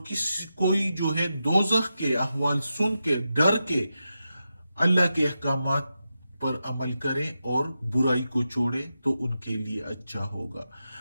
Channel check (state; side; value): inverted; both; correlation -0.89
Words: कोई जो है दोजख के अहवाल सुन के डर के अल्लाह के अहकामात पर अमल करें और बुराई को छोड़े तो उनके लिए अच्छा होगा।